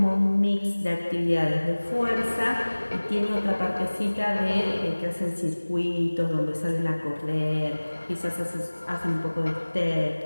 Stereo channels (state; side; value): inverted; both; correlation -1.00